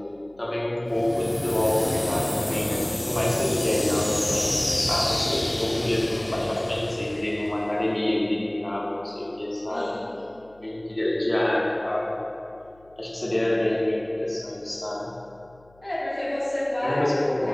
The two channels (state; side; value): noise; left; hum, 29 dB below the sound